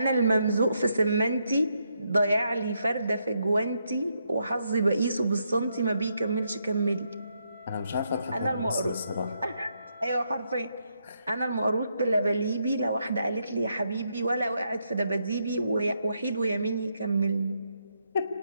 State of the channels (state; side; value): inverted; both; correlation -0.79